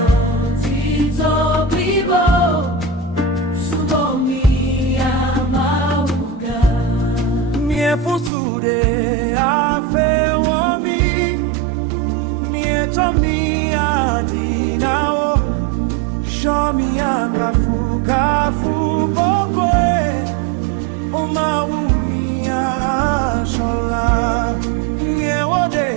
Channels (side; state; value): left; drops out; at 8.3 s